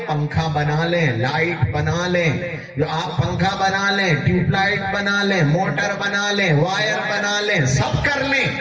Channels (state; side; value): identical; both; correlation 1.00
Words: پنکھا بنا لیں, لائٹ بنا لیں, جو آپ پنکھا بنا لیں, ٹیوب لائٹ بنا لیں, موٹر بنا لیں, وائر بنا لیں, سب کر لیں,